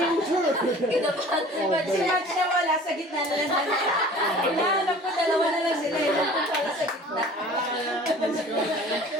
sure. Si Max na wala sa gitna na lang. Hinahanap ko, dalawa na lang sila. Yung pala sa gitna.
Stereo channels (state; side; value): normal; both; correlation 0.45